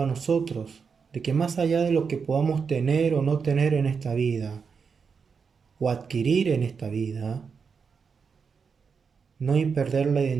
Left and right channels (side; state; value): left; quieter; 5.8 dB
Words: a nosotros, de que más allá de lo que podamos tener o no tener en esta vida, o adquirir en esta vida, no hay perder la